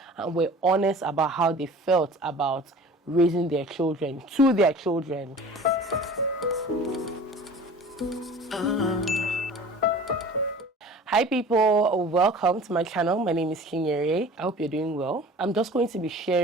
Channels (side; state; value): both; normal; correlation 0.42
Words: and were honest about how they felt about raising their children, to their children. Hi people, welcome to my channel. My name is Chinyere. I hope you're doing well. I'm just going to be